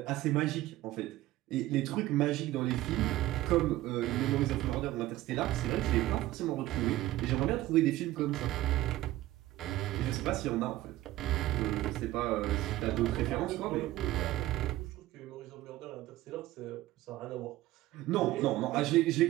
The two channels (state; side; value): quieter; left; 16.2 dB